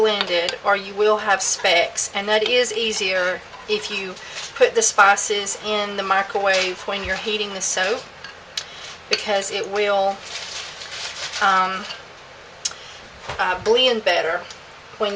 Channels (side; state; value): both; identical; correlation 1.00